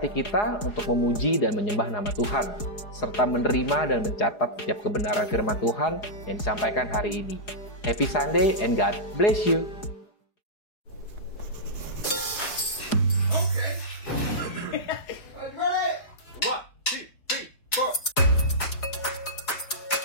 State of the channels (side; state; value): right; late; 4.8 ms